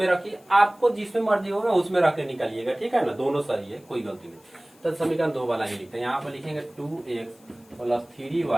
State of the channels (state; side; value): noise; left; hiss, 29 dB below the sound